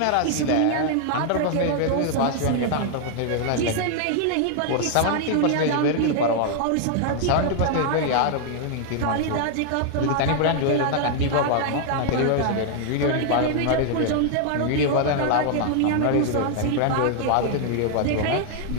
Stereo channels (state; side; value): different; both; correlation 0.00